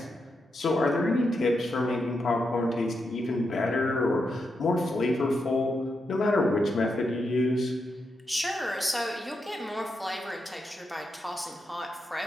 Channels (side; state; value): both; normal; correlation 0.85